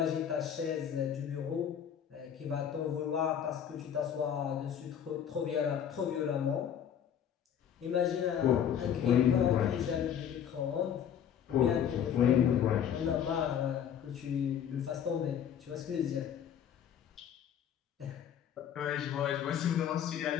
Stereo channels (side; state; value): right; quieter; 8.9 dB